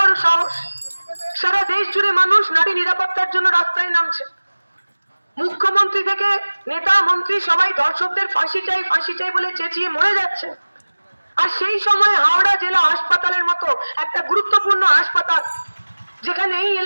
সাহস। সারা দেশ জুড়ে মানুষ নারী নিরাপত্তার জন্য রাস্তায় নামছে। মুখ্যমন্ত্রী থেকে নেতা মন্ত্রী সবাই ধর্ষকদের ফাঁসি চাই বলে চেঁচিয়ে মরে যাচ্ছে। আর সেই সময় হাওড়া জেলা হাসপাতালের মতো একটা গুরুত্বপূর্ণ হাসপাতাল, যেখানে এই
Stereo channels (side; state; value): both; inverted; correlation -1.00